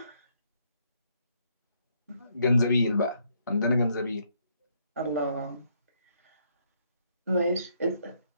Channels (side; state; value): both; inverted; correlation -0.72